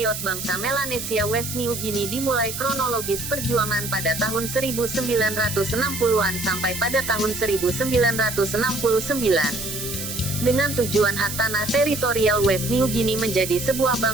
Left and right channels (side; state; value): right; noise; hiss, 6 dB below the sound